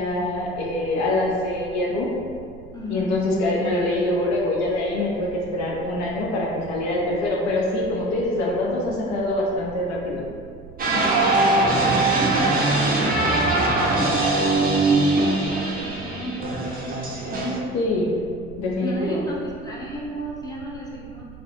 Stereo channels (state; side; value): noise; right; rumble, 19 dB below the sound